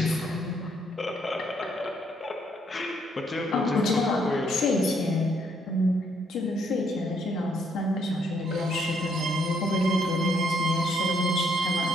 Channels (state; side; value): normal; both; correlation 0.71